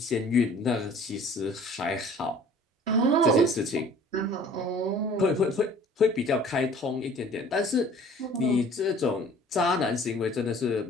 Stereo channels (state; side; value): normal; both; correlation 0.50